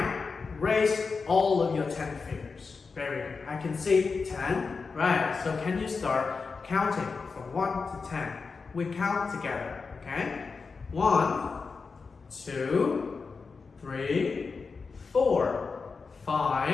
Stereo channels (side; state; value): right; quieter; 4.7 dB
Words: raise all of your 10 fingers. Very good. I can see 10. Right, so can you start counting from 1 to 10? We count together, okay? 1, 2, 3, 4,